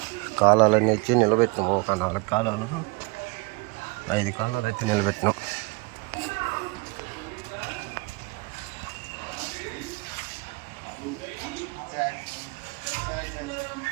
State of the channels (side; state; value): left; quieter; 27.0 dB